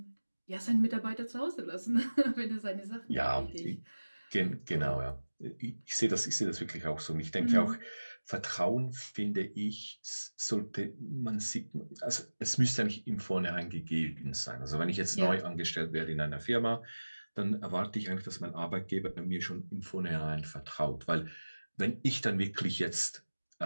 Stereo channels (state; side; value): inverted; both; correlation -1.00